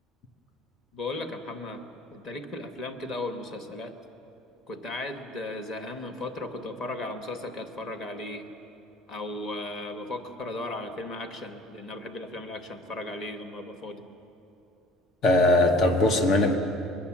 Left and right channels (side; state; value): both; normal; correlation 0.50